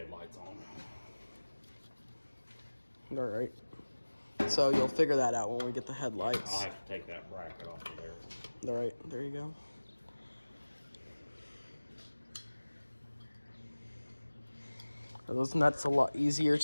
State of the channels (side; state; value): both; inverted; correlation -1.00